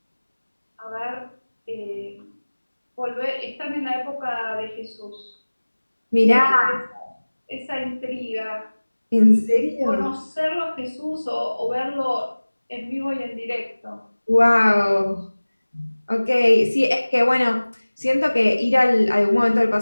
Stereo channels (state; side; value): inverted; both; correlation -1.00